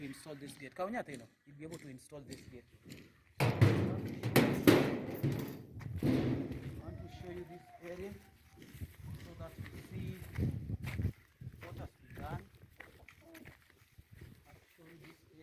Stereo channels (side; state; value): both; identical; correlation 1.00